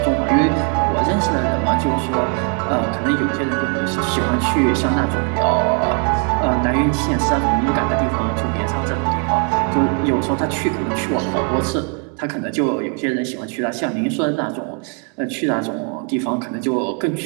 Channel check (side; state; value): left; quieter; 38.1 dB